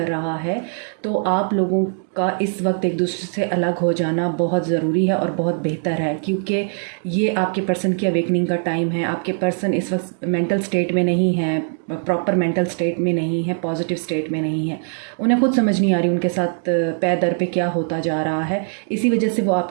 रहा है, तो आप लोगों का इस वक्त एक दूसरे से अलग हो जाना बहुत ज़रूरी है और बहुत बेहतर है, क्योंकि ये आपके पर्सन की अवेकनिंग का टाइम है। आपके पर्सन इस वक्त मेंटल स्टेट में नहीं है, प्रॉपर मेंटल स्टेट में नहीं है, पॉजिटिव स्टेट में नहीं है। उन्हें खुद समझ नहीं आ रही उनके साथ पैर दर पे क्या होता जा रहा है। इसी वजह से वो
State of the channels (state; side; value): silent; left; 65 dB below the other